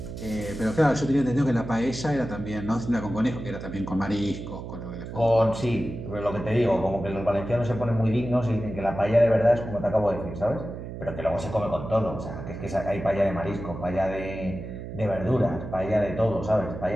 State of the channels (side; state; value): right; noise; hum, 9 dB below the sound